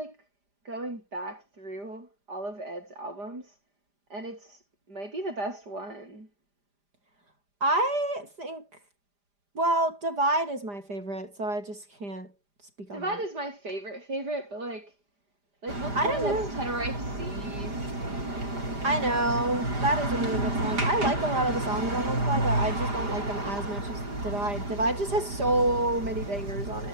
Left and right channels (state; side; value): late; left; 5.0 ms